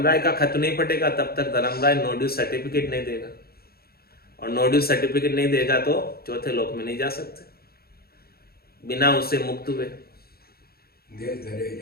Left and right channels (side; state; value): right; late; 0.45 ms